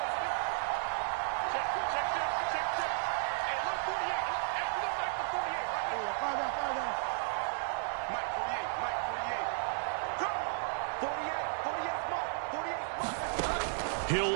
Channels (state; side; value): silent; left; digital silence